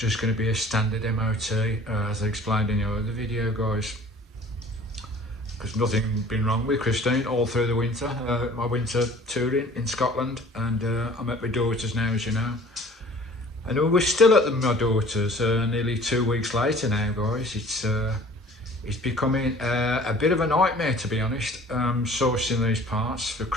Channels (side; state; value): both; normal; correlation 0.48